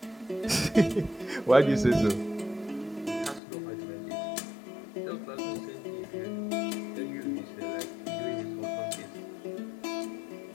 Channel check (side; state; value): right; drops out; at 3.4 s